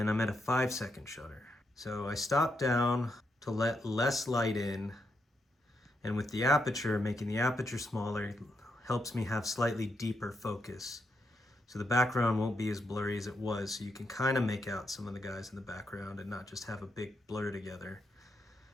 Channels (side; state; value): both; normal; correlation 0.81